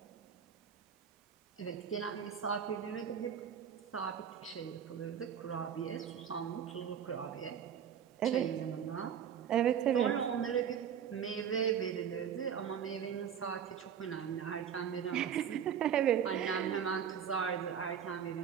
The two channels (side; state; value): left; quieter; 8.4 dB